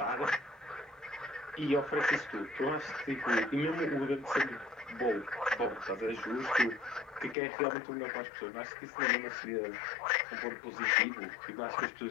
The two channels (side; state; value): right; drops out; at 7.4 s